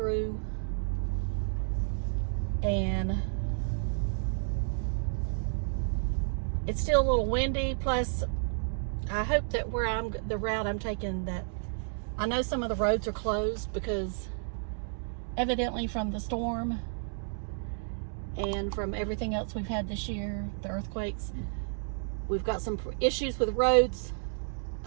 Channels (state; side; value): silent; left; digital silence